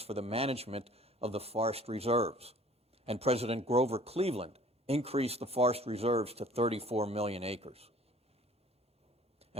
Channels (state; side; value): normal; both; correlation 0.51